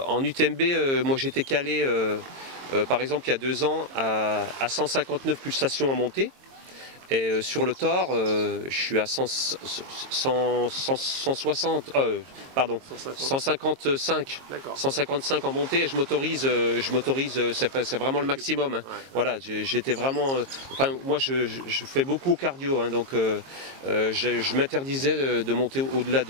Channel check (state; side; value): late; left; 22 ms